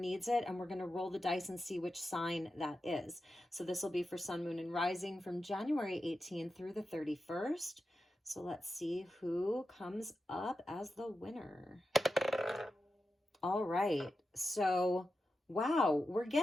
it, and we're going to roll the dice and see which sign that is. So this will be for Sun, Moon, and Rising from January 18th through the 31st. So let's see who comes up as the winner. All right. So wow, we're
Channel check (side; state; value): both; normal; correlation 0.90